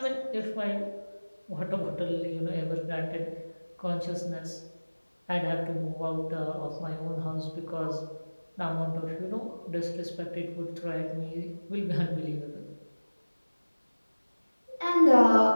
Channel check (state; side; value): inverted; both; correlation -1.00